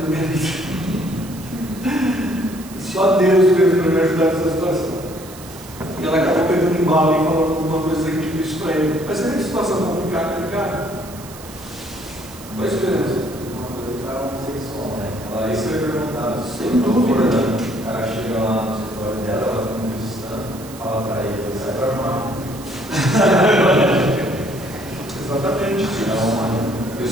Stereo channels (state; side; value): noise; right; hiss, 18 dB below the sound